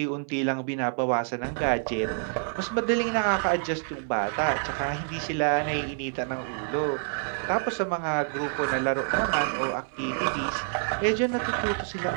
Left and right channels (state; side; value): silent; left; 60 dB below the other